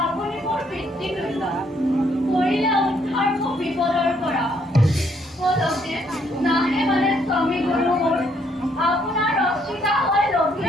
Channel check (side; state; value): both; normal; correlation 0.70